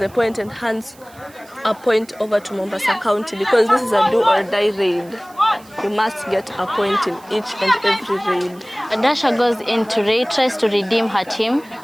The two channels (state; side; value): noise; right; hiss, 26 dB below the sound